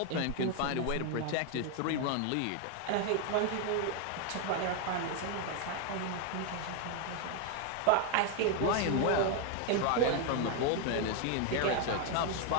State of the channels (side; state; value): both; different; correlation 0.01